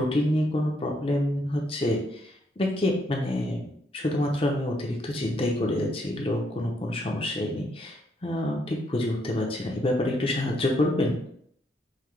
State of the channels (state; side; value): normal; both; correlation 0.74